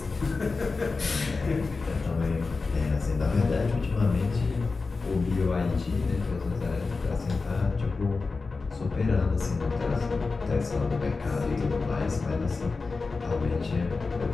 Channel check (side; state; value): right; quieter; 4.1 dB